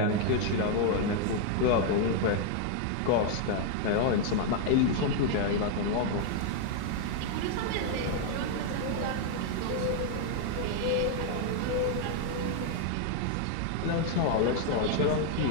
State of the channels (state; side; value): different; both; correlation 0.00